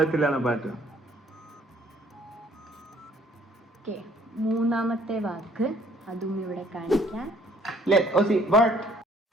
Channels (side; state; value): both; normal; correlation 0.60